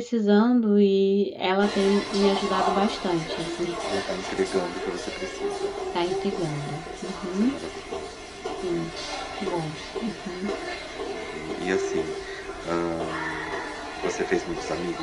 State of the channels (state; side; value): identical; both; correlation 1.00